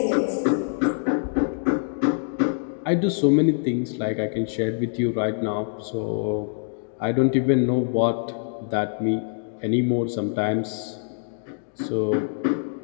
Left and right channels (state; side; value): silent; right; digital silence